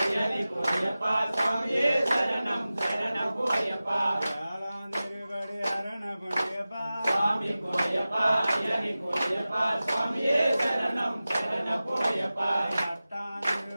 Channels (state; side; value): inverted; both; correlation -0.96